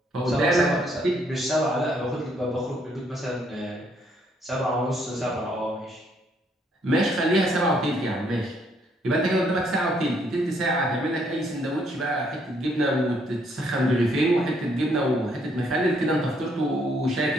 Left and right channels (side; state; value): both; normal; correlation 0.69